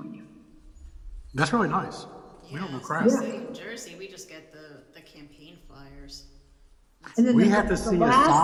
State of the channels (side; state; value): both; identical; correlation 1.00